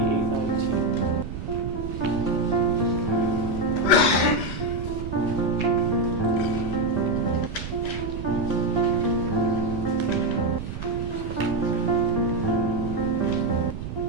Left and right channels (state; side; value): noise; right; rumble, 7 dB below the sound